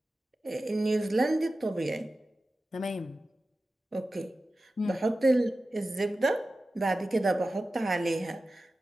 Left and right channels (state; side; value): normal; both; correlation 0.94